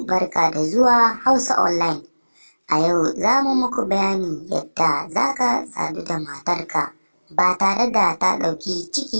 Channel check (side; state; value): both; inverted; correlation -1.00